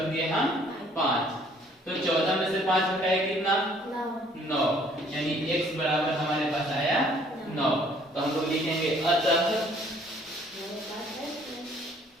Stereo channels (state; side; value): normal; both; correlation 0.60